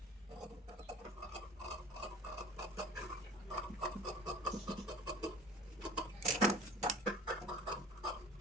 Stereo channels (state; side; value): normal; both; correlation 0.44